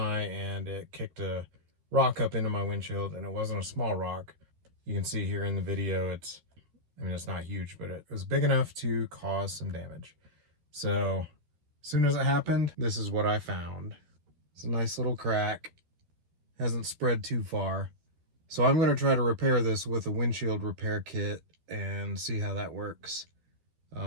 and it kicked a rock up into my windshield, and it wasn't a small rock. You can see here in the video it's not huge, but it was big enough to cause some damage. So as soon as it happened, this is what I found. It's a nice little crack. Hasn't spread too far. So I'm going to try to repair this with a windshield repair kit and see how that works.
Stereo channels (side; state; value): left; late; 12 ms